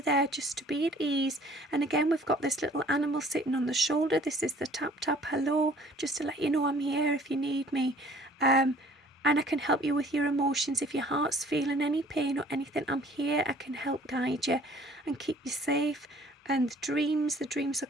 there, just to be at ease. And again, we've got this little animal sitting on the shoulder. This is the tap tap hello, just to let you know I'm here if you need me. And I can help you with your emotions. If your heart's feeling any pain or anything, I'm here. I can help guide you and keep you safe. And the dreams are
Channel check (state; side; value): normal; both; correlation 0.54